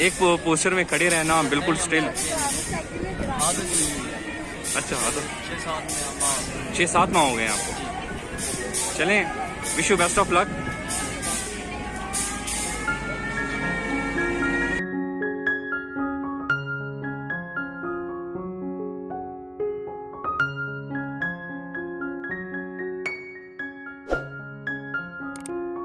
एक पोस्टर में खड़े रहना बिल्कुल स्टिल। अच्छा, आदत 6-7 माह हो गए आपको। चलें, wish you best of luck.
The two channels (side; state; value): both; identical; correlation 1.00